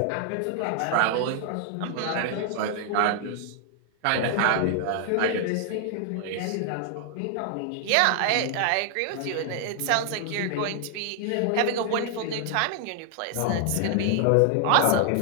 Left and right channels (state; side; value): different; both; correlation 0.00